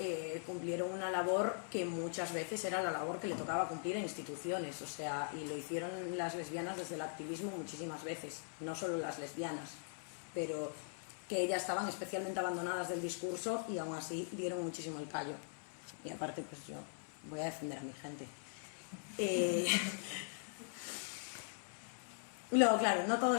cumplieron una labor que muchas veces era la labor que le tocaba cumplir a instituciones, o sea, y lo hicieron las lesbianas desde el activismo muchísimas veces, no solo las lesbianas, pero que ellas estaban especialmente abandonadas del discurso y aún así dieron muchísimo el callo. Y aparte, pues yo voy a defender a mi gente. Luego, claro, no todo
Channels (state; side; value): silent; right; 50 dB below the other